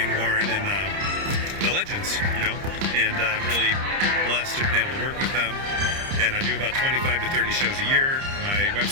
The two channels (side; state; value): left; late; 30 ms